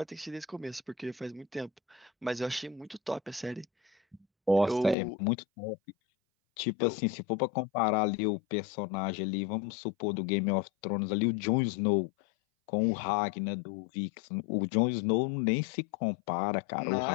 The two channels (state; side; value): drops out; right; at 5.0 s